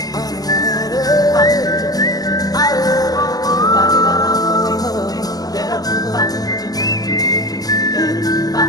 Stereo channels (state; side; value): late; right; 0.18 ms